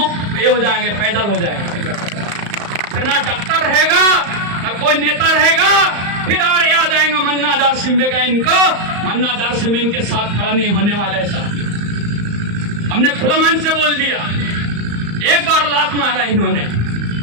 ये हो जाएंगे, पैदल हो जाएंगे। फिर ना डॉक्टर रहेगा, ना कोई नेता रहेगा। फिर और याद आएगा मन्ना दार सिंबे का। इनको मन्ना दार सिंबे इनके साथ खड़ा नहीं होने वाला है। हमने खुला मन से बोल दिया, एक बार लात मारा इन्होंने,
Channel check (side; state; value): left; late; 35 ms